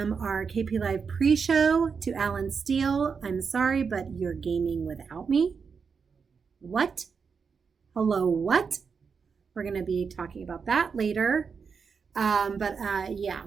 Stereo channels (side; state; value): left; quieter; 5.8 dB